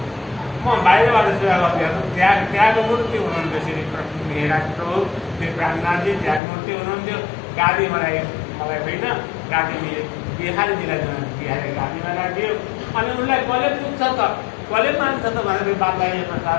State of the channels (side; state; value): right; drops out; at 6.4 s